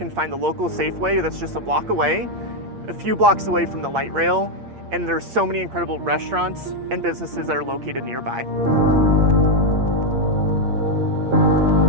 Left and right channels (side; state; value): left; late; 8.6 ms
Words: find the local Safeway that's just a block away, a few blocks away from the light rail, and there's so many incredible restaurants and businesses that are located nearby.